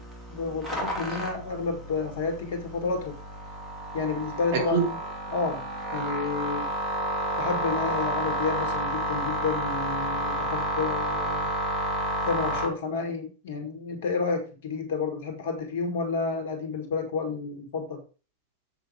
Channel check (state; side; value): normal; both; correlation -0.19